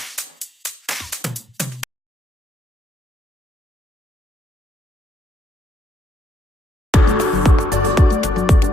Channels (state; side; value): normal; both; correlation 0.75